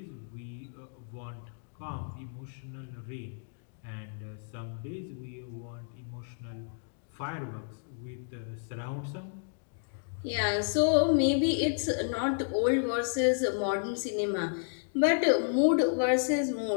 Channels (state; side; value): silent; right; digital silence